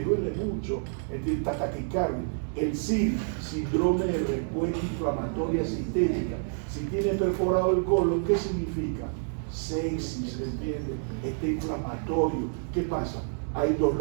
mucho, ¿entiendes? Taquicardia. El SID, síndrome de respuesta inflamatoria sistémica, si tiene perforado el colon, ¿qué significa? Sepsis, ¿entiendes? Está inflamatorio. ¿Qué pasa? Hay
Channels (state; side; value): silent; left; 58 dB below the other